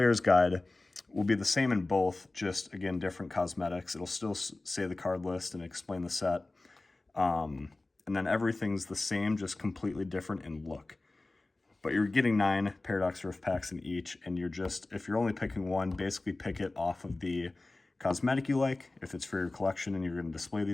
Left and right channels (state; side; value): quieter; right; 3.0 dB